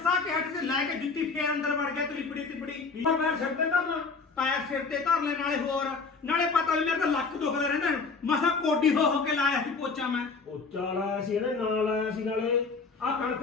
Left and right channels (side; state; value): right; quieter; 4.5 dB